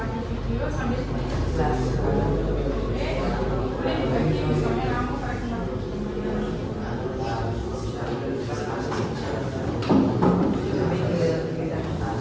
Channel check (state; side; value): identical; both; correlation 1.00